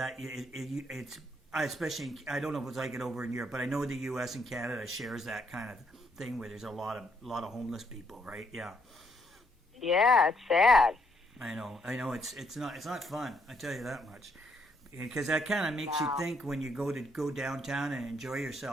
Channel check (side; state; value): both; normal; correlation 0.72